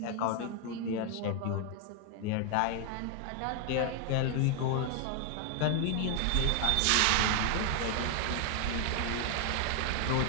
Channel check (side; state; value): both; different; correlation 0.00